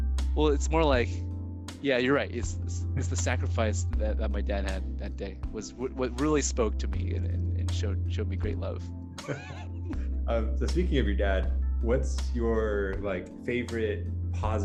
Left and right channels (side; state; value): both; identical; correlation 1.00